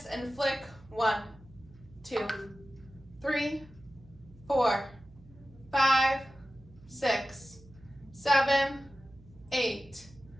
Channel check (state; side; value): noise; right; hum, 23 dB below the sound